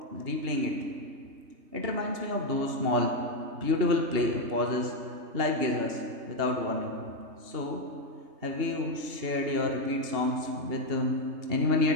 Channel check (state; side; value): late; left; 2.8 ms